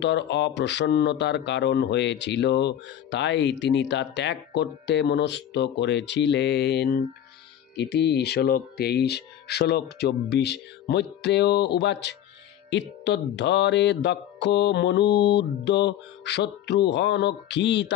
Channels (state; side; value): quieter; right; 10.7 dB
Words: অপ্রসন্নতার কারণ হয়েছিল, তাই তিনি তা ত্যাগ করতে মনস্থ করেছিলেন। ইতি শ্লোক 23। শ্লোক 24। মৈত্রেয় উবাচ ইত্যদ্ধরে দক্ষ মনুদ্য